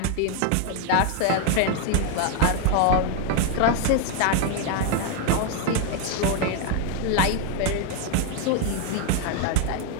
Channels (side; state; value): both; different; correlation 0.00